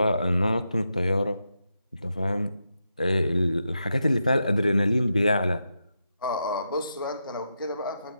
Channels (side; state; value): both; inverted; correlation -0.86